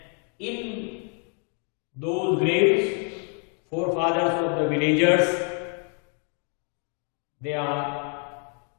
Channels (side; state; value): right; quieter; 39.8 dB